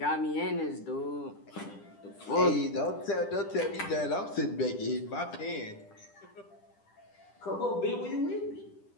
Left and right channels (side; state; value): right; late; 10 ms